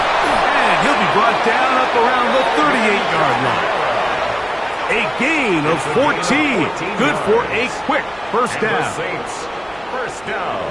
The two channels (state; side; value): noise; right; hum, 25 dB below the sound